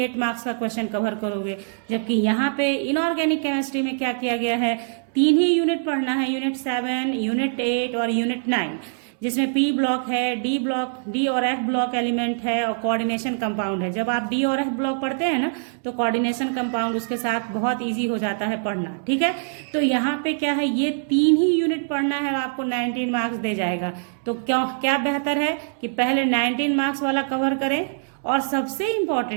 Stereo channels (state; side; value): silent; left; digital silence